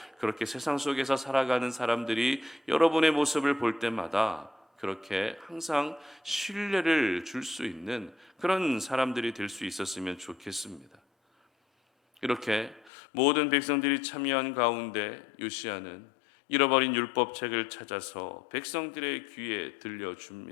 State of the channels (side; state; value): right; drops out; at 12.9 s